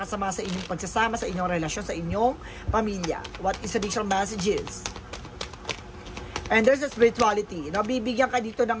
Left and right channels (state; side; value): identical; both; correlation 1.00